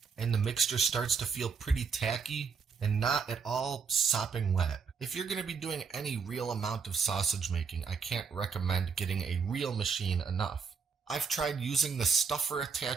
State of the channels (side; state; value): left; quieter; 5.8 dB